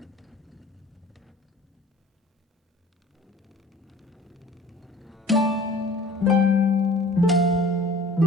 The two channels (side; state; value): both; normal; correlation 0.47